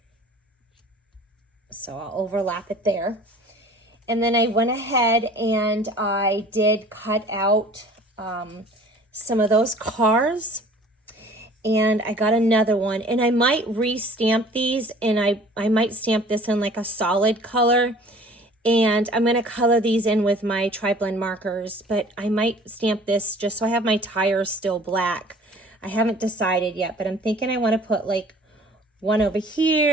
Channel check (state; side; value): normal; both; correlation 0.49